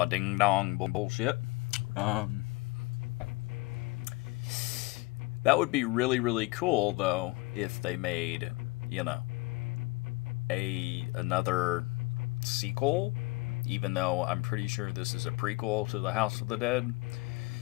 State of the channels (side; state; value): right; quieter; 23.2 dB